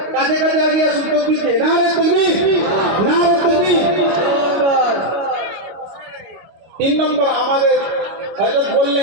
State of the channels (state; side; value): late; left; 25 ms